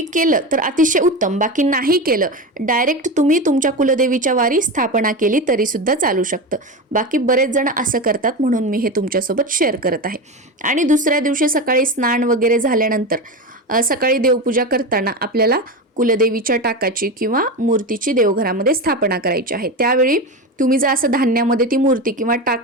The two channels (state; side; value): normal; both; correlation 0.21